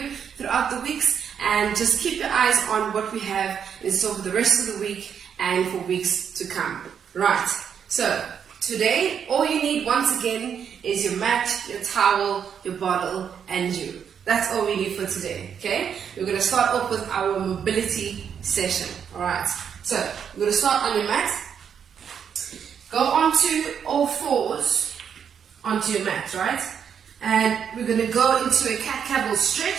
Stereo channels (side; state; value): left; quieter; 7.7 dB